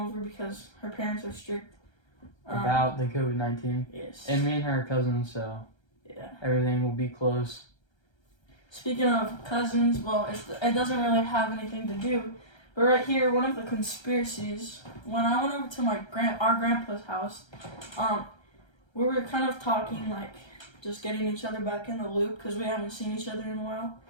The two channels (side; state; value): right; late; 1.3 ms